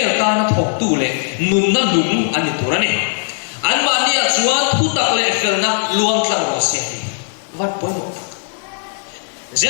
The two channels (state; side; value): silent; right; 68 dB below the other